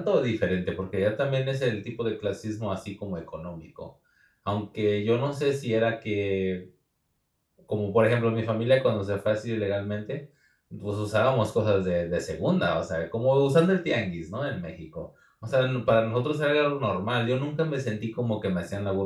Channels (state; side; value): identical; both; correlation 1.00